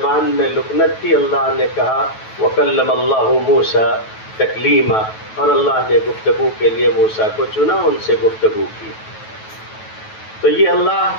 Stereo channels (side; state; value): right; late; 9.2 ms